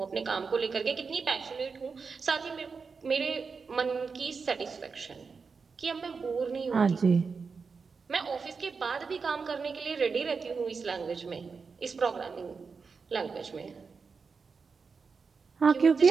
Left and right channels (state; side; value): quieter; left; 5.1 dB